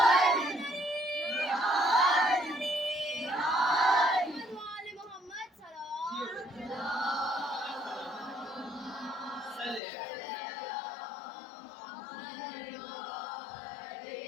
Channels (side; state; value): right; drops out; at 9.8 s